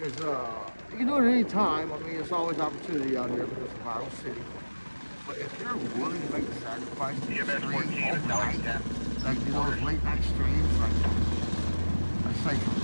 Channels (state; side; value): inverted; both; correlation -1.00